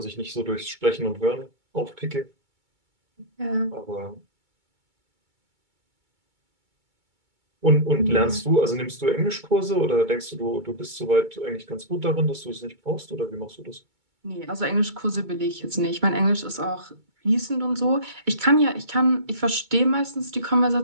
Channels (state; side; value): late; left; 2.2 ms